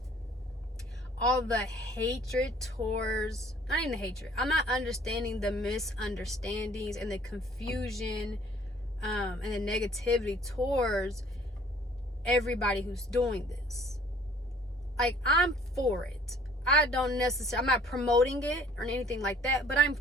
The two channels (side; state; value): both; normal; correlation 0.55